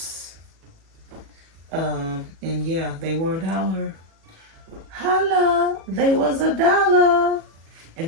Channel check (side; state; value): left; late; 37 ms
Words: And yeah, they were $1. Holla, they was $1. And